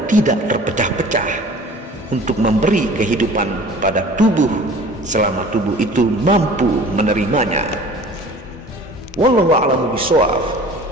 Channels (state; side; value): normal; both; correlation 0.45